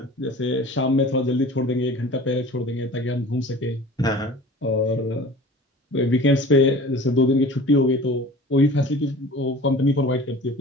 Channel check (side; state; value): both; normal; correlation 0.42